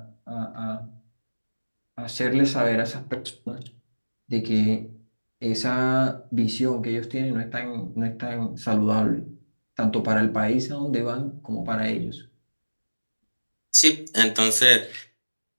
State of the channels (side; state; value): both; inverted; correlation -1.00